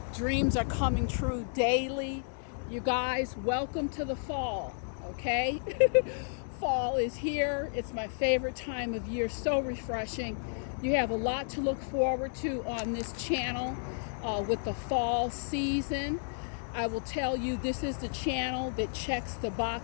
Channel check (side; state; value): right; silent; digital silence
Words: Dreams are coming true daily. You guys, welcome to the fall, okay? Fall is here. It's my favorite time of year. So refreshing. You have a lot to look forward to on this channel with the fall season. I will tell you, this is the channel that checks the